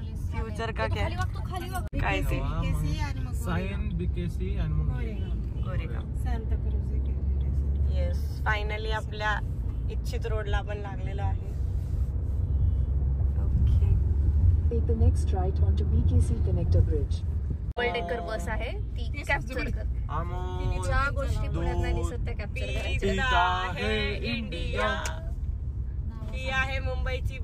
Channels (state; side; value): identical; both; correlation 1.00